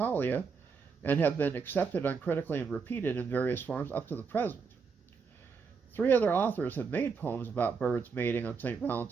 and have been accepted uncritically and repeated in various forms up to the present. 3 other authors have made poems about birds mating on St.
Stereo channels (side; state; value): left; quieter; 5.4 dB